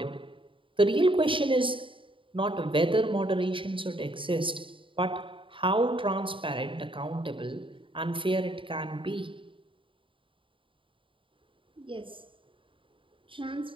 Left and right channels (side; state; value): left; late; 0.25 ms